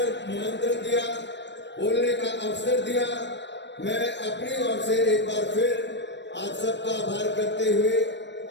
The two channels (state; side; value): late; right; 0.52 ms